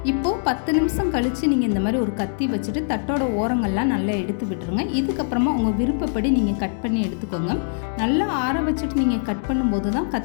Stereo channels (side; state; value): right; silent; digital silence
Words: இப்போது 10 நிமிஷம் கழித்து நீங்கள் இந்த மாதிரி ஒரு கத்தி வச்சுட்டு தட்டோட ஓரங்கள்லாம் நல்லா எடுத்து விட்டுருங்க. இதுக்கப்புறமா உங்கள் விருப்பப்படி நீங்கள் கட் பண்ணி எடுத்துக்கோங்க. நல்லா ஆற வச்சுட்டு நீங்கள் கட் பண்ணும்போது தான்